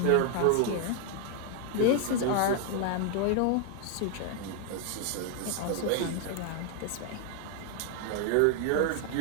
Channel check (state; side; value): different; both; correlation 0.00